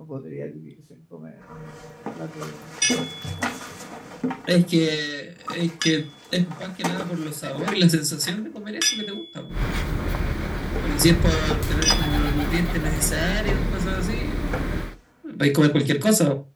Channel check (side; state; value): both; identical; correlation 1.00